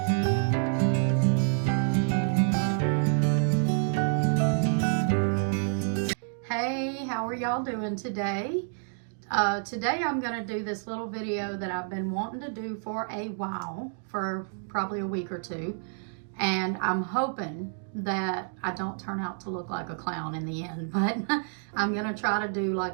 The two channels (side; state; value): left; silent; digital silence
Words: how are y'all doing today? Today I'm going to do this little video that I've been wanting to do for a while, for probably a week or two. And I'm hoping that I don't turn out to look like a clown in the end, but I'm going to try to do